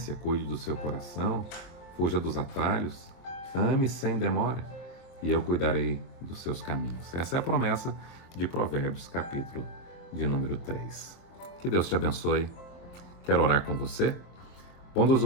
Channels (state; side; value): late; right; 23 ms